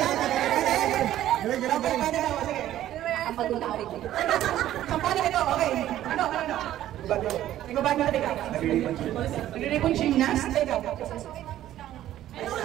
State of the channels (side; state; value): left; quieter; 12.9 dB